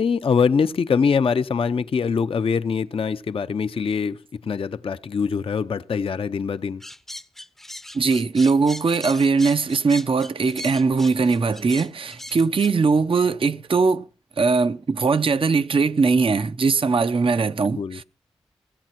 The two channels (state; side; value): normal; both; correlation 0.76